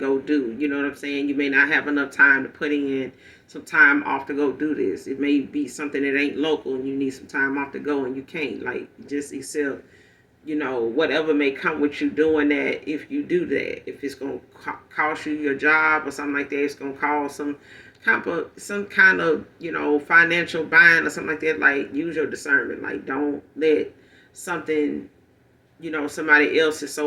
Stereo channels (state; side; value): identical; both; correlation 1.00